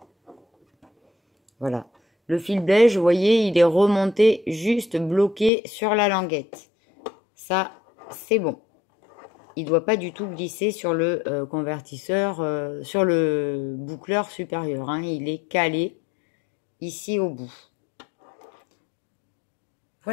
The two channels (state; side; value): drops out; right; at 5.5 s